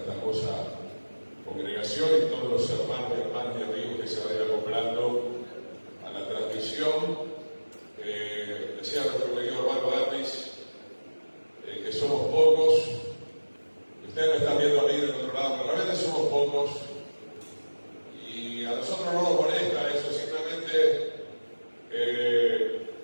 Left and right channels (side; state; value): both; inverted; correlation -1.00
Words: hermosa congregación y todos los hermanos y hermanas y amigos que se vayan acoplando a la transmisión. Decía nuestro querido hermano Davis que somos pocos. Ustedes me están viendo a mí del otro lado, pero realmente somos pocos y a nosotros no nos molesta eso, simplemente